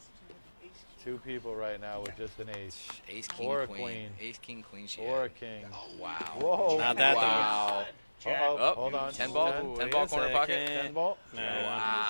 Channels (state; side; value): inverted; both; correlation -1.00